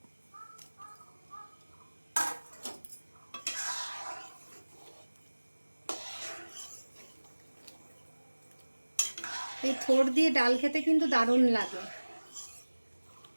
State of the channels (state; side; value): inverted; both; correlation -1.00